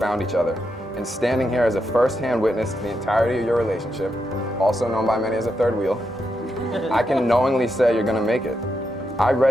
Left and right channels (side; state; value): both; normal; correlation 0.84